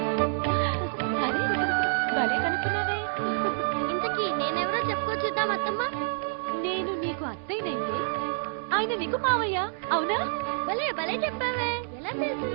అరే భలే కనుక్కున్నావే. ఇంతకీ నేనెవరో చెప్పుకోవచ్చుద్దాం అత్తమ్మ. నేను నీకు అత్తయ్యనైతే ఆయన నీకు మావయ్య అవునా? భలే భలే చెప్పావే, ఎలా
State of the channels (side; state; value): left; silent; 59 dB below the other